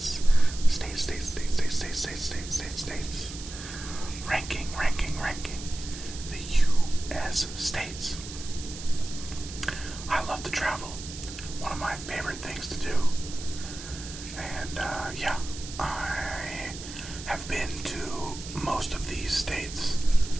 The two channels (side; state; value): right; noise; hiss, 12 dB below the sound